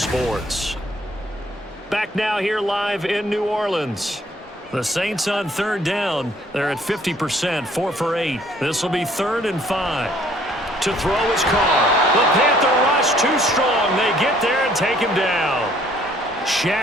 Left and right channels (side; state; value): both; normal; correlation 0.61